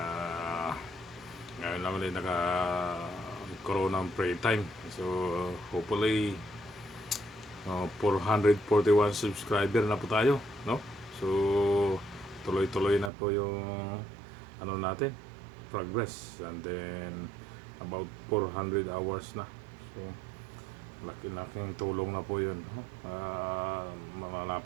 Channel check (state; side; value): drops out; left; at 13.1 s